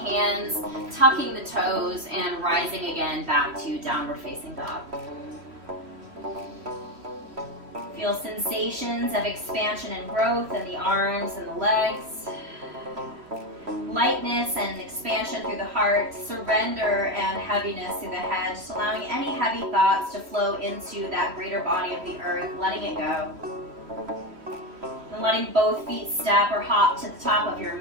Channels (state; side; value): late; left; 3.1 ms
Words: tucking the toes, and rising again back to downward facing dog. Feel sensations of expansion and growth in the arms and the legs. Lightness and expansion through the heart, surrender and heaviness through the head, just allowing any heavy thoughts to flow into that greater body of the earth, letting it go. And letting both feet step or hop to the top of your